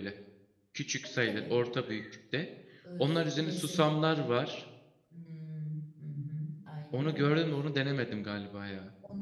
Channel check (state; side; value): identical; both; correlation 1.00